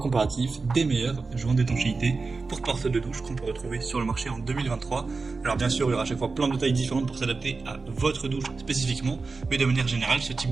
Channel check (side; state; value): left; quieter; 4.1 dB